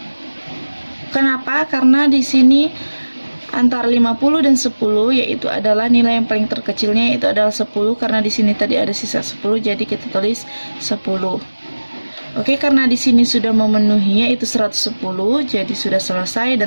Kenapa? Karena di sini antara 50 dan 10, yaitu adalah nilai yang paling terkecilnya, yaitu adalah 10. Karena di sini tadi ada sisa 10, jadi kita tulis 10. Oke, karena di sini sudah memenuhi, yaitu 110, jadi sudah selesai,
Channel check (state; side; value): inverted; both; correlation -1.00